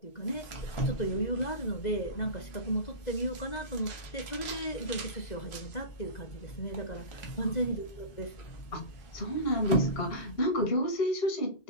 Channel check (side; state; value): right; late; 2.0 ms